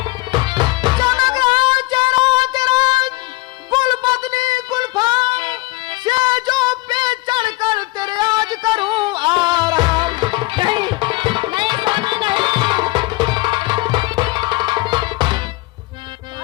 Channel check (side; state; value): right; quieter; 21.0 dB